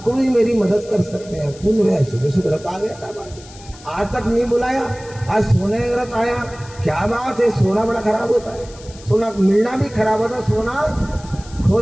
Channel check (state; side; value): noise; left; hiss, 20 dB below the sound